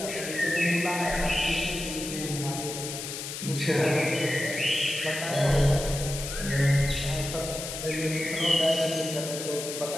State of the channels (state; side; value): noise; left; hiss, 7 dB below the sound